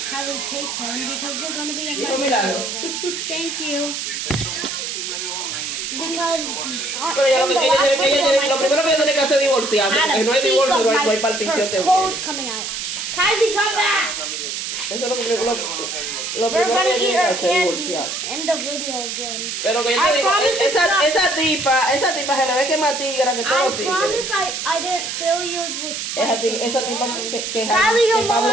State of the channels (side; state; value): right; noise; hiss, 4 dB below the sound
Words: Kylie, take one because you're gonna be in my video. Thank you. Because Lo primero que tiene que hacer es divorciarse. Porque no hay divorcio, no hay partición. Toes coming out. Kylie, come back. Eso es lo primero We're que gonna eat tiene que our hacer, candy. divorciarse. End the video again. Pero que yo te digo, esa tipa se le ve que es más tigra que todos los tigres. I promise I didn't feel yours was spicy. Esa tipa que Kylie, come Pablo